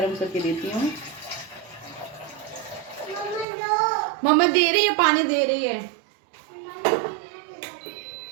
करके देती हूँ। मम्मा दे रही है, पानी दे रही है,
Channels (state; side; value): drops out; left; at 3.5 s